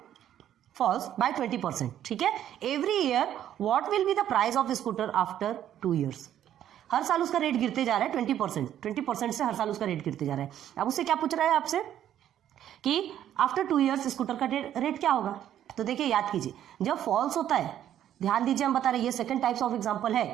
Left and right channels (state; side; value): quieter; left; 11.0 dB